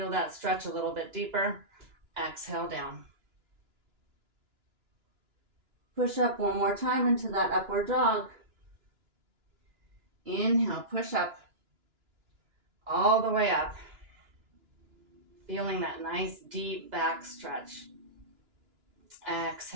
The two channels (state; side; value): late; left; 2.9 ms